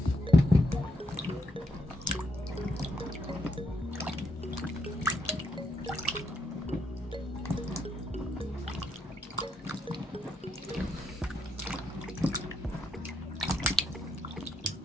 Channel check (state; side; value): normal; both; correlation 0.78